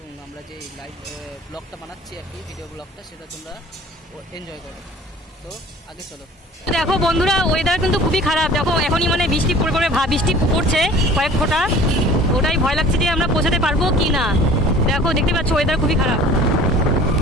আমরা যে লাইভ ব্লগটা বানাচ্ছি আর কি, ভিডিও ব্লগটা, সেটা তোমরা এনজয় করো। তো আগে চলো। দেখো বন্ধুরা, ওয়েদার কিন্তু খুবই খারাপ। দেখো এখনই মানে বৃষ্টি পড়বে, বৃষ্টি পড়ছে কয়েক ফোঁটা। ওটাই ভয় লাগছে যে আমরা পৌঁছাতে পারবো কি না। দেখো দেখতে পাচ্ছ ওয়েদার খুবই খারাপ,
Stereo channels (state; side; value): normal; both; correlation 0.46